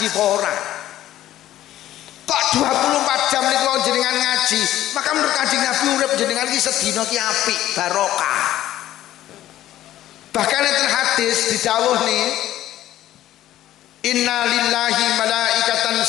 apa ora? Kok 24 jam niku jenengan ngaji, maka menurut Kanjeng Nabi urip jenengan ki sedina ki apik, barokah. Bahkan enten hadis didhawuh nih, inna lillahi malaikatan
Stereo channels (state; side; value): quieter; right; 13.5 dB